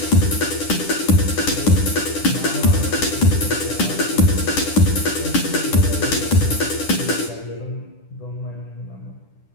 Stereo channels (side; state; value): right; late; 10 ms